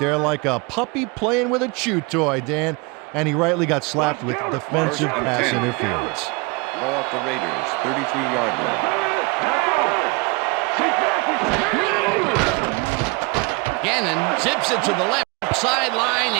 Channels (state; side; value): quieter; left; 27.1 dB